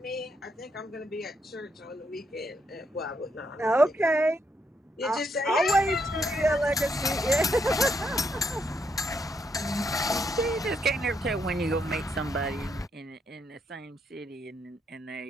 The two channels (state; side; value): normal; both; correlation 0.77